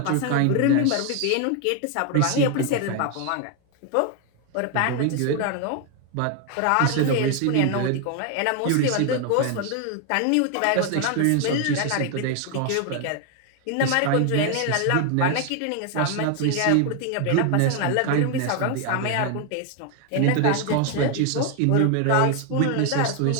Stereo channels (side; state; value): both; different; correlation 0.01